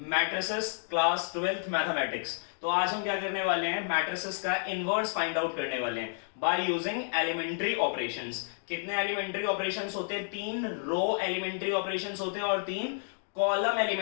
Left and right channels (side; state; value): right; silent; digital silence